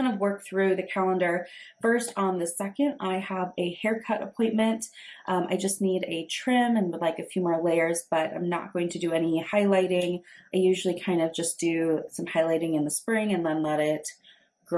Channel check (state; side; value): identical; both; correlation 1.00